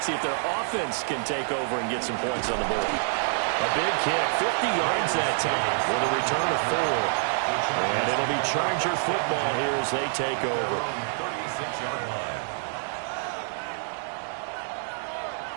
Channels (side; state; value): left; silent; 60 dB below the other